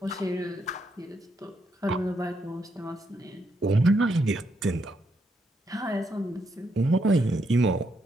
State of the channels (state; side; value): normal; both; correlation 0.78